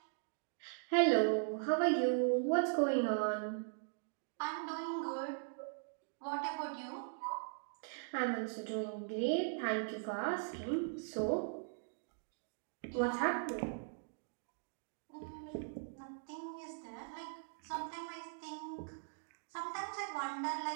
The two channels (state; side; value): silent; left; digital silence